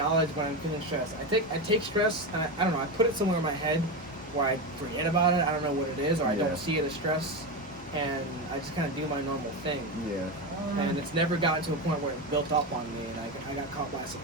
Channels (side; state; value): both; normal; correlation 0.16